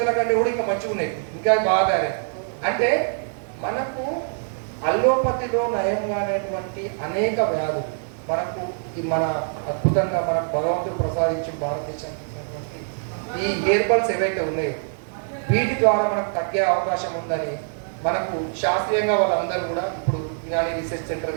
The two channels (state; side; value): silent; left; 63 dB below the other